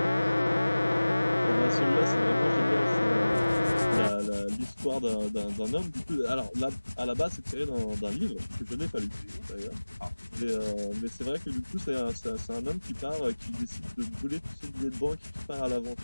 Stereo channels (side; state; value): both; inverted; correlation -1.00